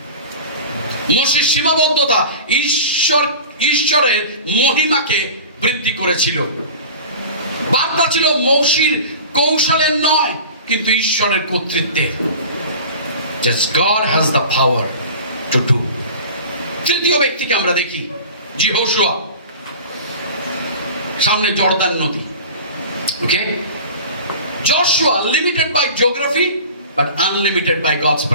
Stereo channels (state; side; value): inverted; both; correlation -0.38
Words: মোশের সীমাবদ্ধতা ঈশ্বরের মহিমাকে বৃদ্ধি করেছিল। বার্তা ছিল মোশির কৌশলের নয়, কিন্তু ঈশ্বরের কর্তৃত্বের। Just God has the power to do. তৃতীয় ব্যক্তিকে আমরা দেখি, যহোশুয়া। সামনে জর্দান নদী। ওকে, Joshua limited by geography but unlimited by God's